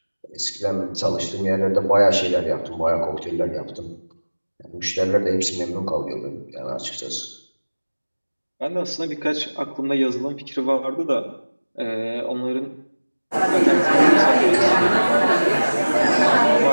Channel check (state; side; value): inverted; both; correlation -1.00